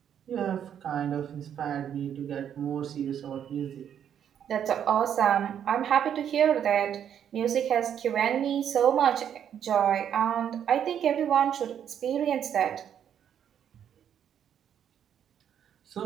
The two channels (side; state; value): left; quieter; 9.1 dB